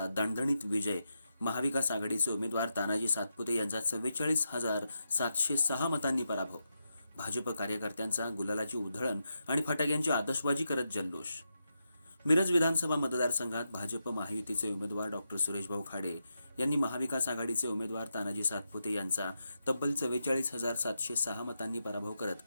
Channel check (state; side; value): inverted; both; correlation -0.86